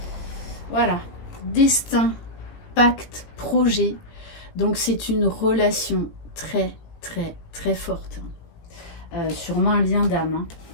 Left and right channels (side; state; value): right; late; 18 ms